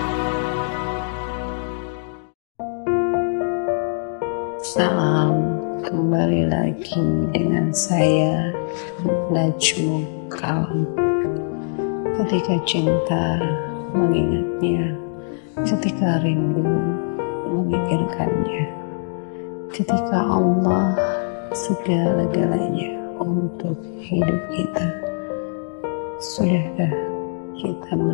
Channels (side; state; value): right; silent; digital silence